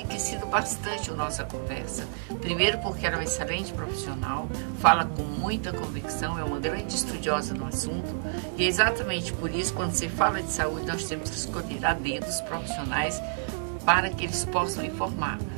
bastante a nossa conversa. Primeiro porque ela é uma excelente profissional, fala com muita convicção, é uma grande estudiosa no assunto. E é exatamente por isso, quando se fala de saúde, nós temos que escolher a dedo os profissionais para que eles possam informar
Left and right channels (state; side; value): silent; left; digital silence